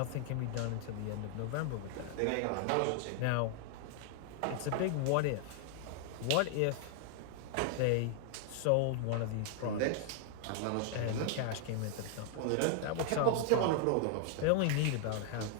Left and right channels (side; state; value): both; different; correlation 0.00